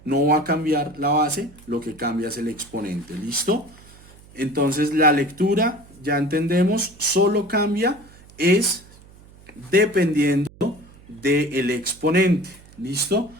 No va a cambiar la base, lo que cambia es el exponente. ¿Listo? Entonces la lectura, ya entendemos, solo cambia es dependiendo del exponente. ¿Listo?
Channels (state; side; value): noise; right; hum, 24 dB below the sound